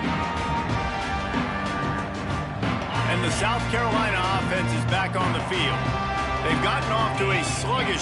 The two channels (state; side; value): identical; both; correlation 1.00